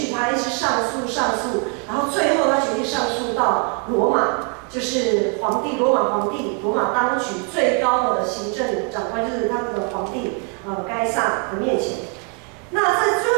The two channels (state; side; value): quieter; left; 35.4 dB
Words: 他一直上诉，然后最后他决定上诉到罗马，就是罗马皇帝，罗马当局最高的行政长官，就是他们的皇帝该撒的面前。那在